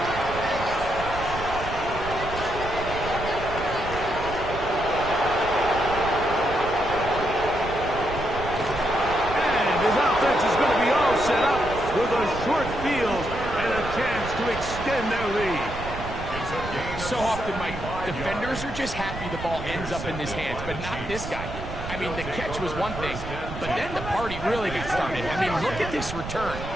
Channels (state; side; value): noise; right; rumble, 9 dB below the sound